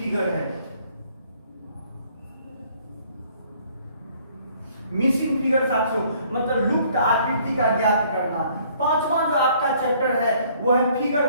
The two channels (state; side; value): inverted; both; correlation -0.61